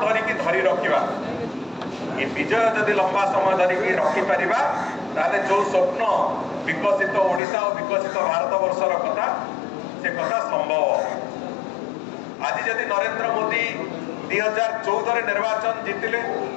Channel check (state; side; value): drops out; right; at 7.4 s